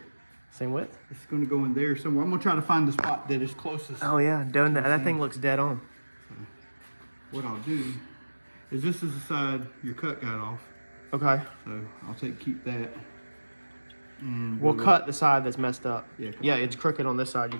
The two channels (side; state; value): both; inverted; correlation -1.00